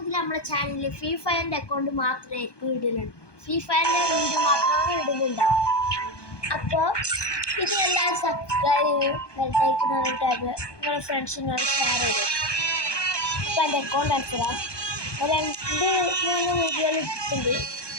നമ്മുടെ ചാനലിൽ ഫ്രീ ഫയറിൻ്റെ അക്കൗണ്ട് മാത്രമേ ഇടുന്നുള്ളൂ. ഫ്രീ ഫയറിൻ്റെ വീഡിയോ മാത്രമാണ് ഇടുന്നുണ്ടാവും. അപ്പോൾ ഇത് എല്ലാവരും സബ്സ്ക്രൈബ് ചെയ്യും, ബെൽറ്റൈക്കൺ ടാബ് നിങ്ങളുടെ ഫ്രണ്ട്സിനോട് ഷെയർ ചെയ്തു. അപ്പോൾ എൻ്റെ അക്കൗണ്ട് അടിച്ചിടാം. 2-3 വീഡിയോകൾ ഇട്ടിട്ടുണ്ട്.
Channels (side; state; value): right; late; 1.2 ms